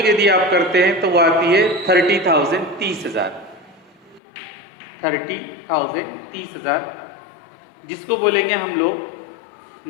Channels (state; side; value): drops out; right; at 4.2 s